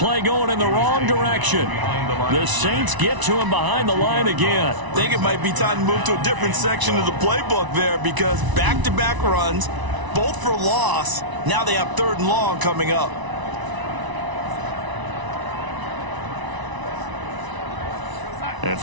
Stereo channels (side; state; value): left; late; 1.0 ms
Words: going in the wrong direction. The Saints get to him behind the line again. I think it might be time to move to a different section of the playbook there because back-to-back runs, both for loss. Now they have 3rd and long coming up. And